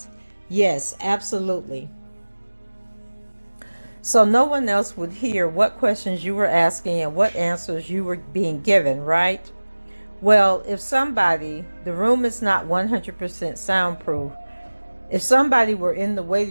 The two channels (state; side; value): inverted; both; correlation -1.00